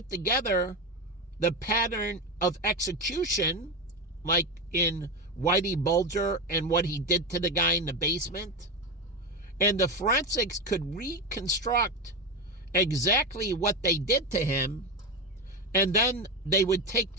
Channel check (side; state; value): both; normal; correlation 0.16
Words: together the pattern of execution, like in Whitey Bulger and what he did to the guy in the basement. And the forensics could reconstruct exactly what they did to him, and then they would take